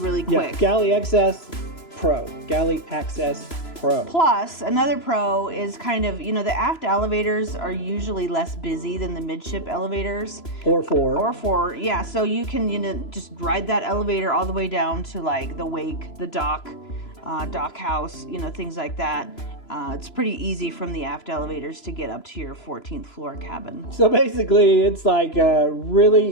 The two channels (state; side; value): late; right; 3.0 ms